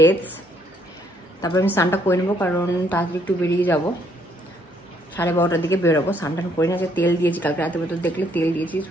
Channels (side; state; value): both; normal; correlation 0.68